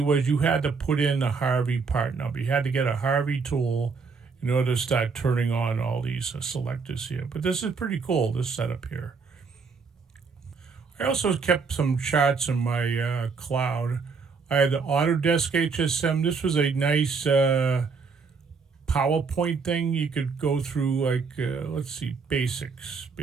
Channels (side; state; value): left; quieter; 5.0 dB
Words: you had to put in a Harvey part number. You had to get a Harvey tool in order to start turning on all these selectors here. But this is pretty cool, this setup here. I also kept some charts in my cloud. I had the Autodesk HSM. This was a nice PowerPoint thing. You could go through like, let's see, basics,